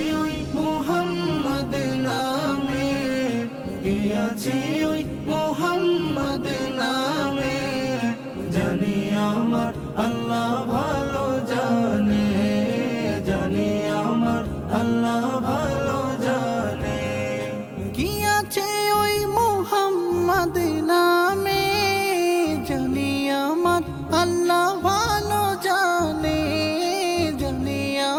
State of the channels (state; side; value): identical; both; correlation 1.00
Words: ওই মুহাম্মদ নামে, কি আছে ওই মুহাম্মদ নামে, জানি আমার আল্লাহ ভালো জানে, জানি আমার আল্লাহ ভালো জানে। কি আছে ওই মুহাম্মদ নামে, জানি আমার আল্লাহ ভালো জানে, জানি